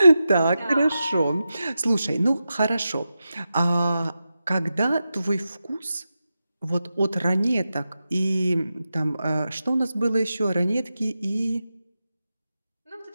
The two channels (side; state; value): both; inverted; correlation -0.91